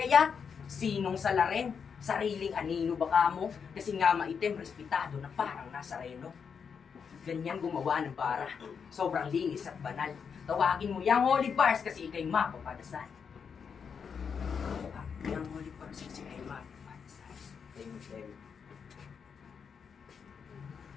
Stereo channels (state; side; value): quieter; right; 6.5 dB